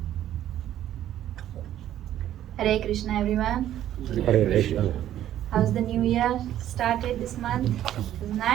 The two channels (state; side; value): quieter; left; 12.0 dB